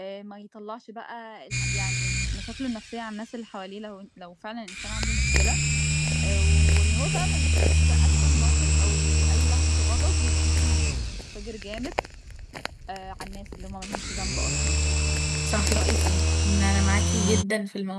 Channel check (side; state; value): both; identical; correlation 1.00